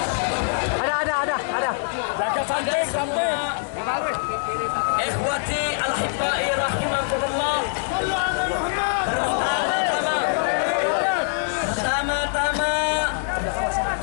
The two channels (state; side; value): silent; right; digital silence